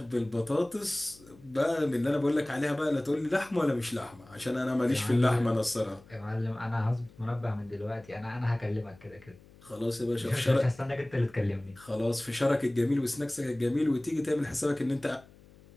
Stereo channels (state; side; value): noise; left; hum, 24 dB below the sound